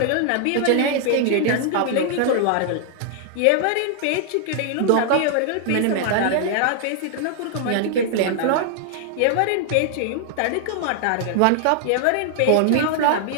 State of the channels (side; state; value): both; different; correlation 0.00